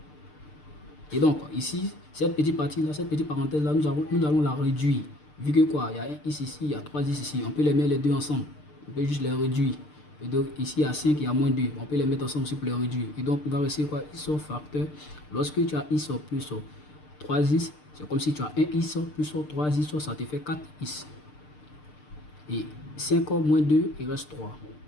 Et donc, ici, cette petite partie-là, cette petite parenthèse-là, nous allons la réduire. Vu que quoi, il y a un x ici, il y a 3x ici. On peut les mettre les deux ensemble. On peut juste les réduire. Et donc, ici, il y a 5, il y a moins 2. On peut les mettre ensemble aussi pour les réduire. Et donc, il va rester quoi? X facteur. Lorsque tu as x plus 3x, c'est comme si tu as un x plus 3x, ça te fait 4x. Et 5 moins 2, il reste 3.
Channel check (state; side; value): late; right; 6.7 ms